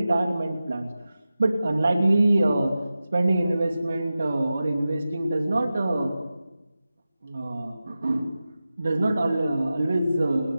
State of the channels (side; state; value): both; inverted; correlation -0.94